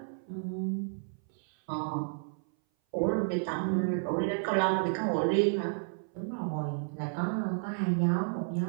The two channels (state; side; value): silent; left; 57 dB below the other